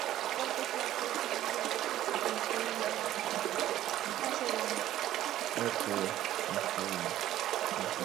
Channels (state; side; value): quieter; left; 13.1 dB